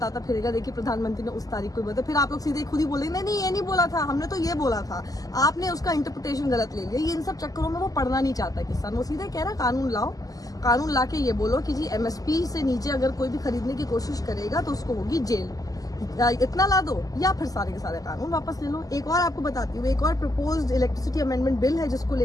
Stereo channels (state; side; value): late; right; 0.17 ms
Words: फिरेगा, देखिए प्रधानमंत्री ने उस तारीख को बोला, फिर आप लोग सीधे खुद ही बोलेंगे नहीं नहीं ये नहीं बोला था, हमने तो ये बोला था, आपने उसका इंटरप्रिटेशन गलत ले लिया। ये इन सब चक्करों में वो पढ़ना नहीं चाहता किसान। वो सीधे कह रहा कानून लाओ, कानून ला के ये बोलो कि जी एमएसपी से नीचे अगर कोई भी खरीदने की कोशिश करेगा तो उसको होगी जेल। इतना ला दो या फिर सारे के सारे कानून वापस ले लो। एक और आपको बताती हूँ, एक और प्रपोज्ड इलेक्ट्रिसिटी अमेंडमेंट बिल है जिसको